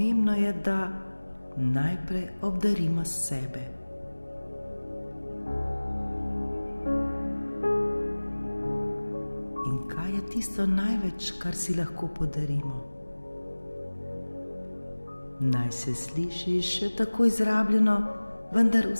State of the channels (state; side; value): inverted; both; correlation -1.00